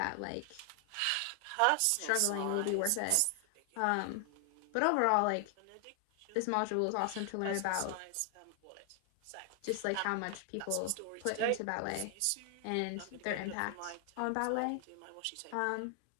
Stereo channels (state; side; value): different; both; correlation 0.00